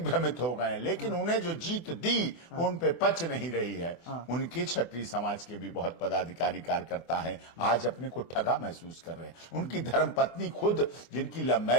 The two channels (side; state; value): right; late; 24 ms